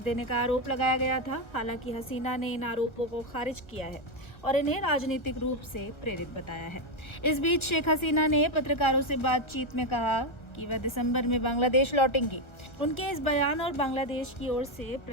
का आरोप लगाया गया था। हालांकि हसीना ने इन आरोपों को खारिज किया है और इन्हें राजनीतिक रूप से प्रेरित बताया है। इस बीच शेख हसीना ने पत्रकारों से बातचीत में कहा कि वह दिसंबर में बांग्लादेश लौटेंगी। उनके इस बयान और बांग्लादेश की ओर से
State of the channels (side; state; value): right; late; 1.3 ms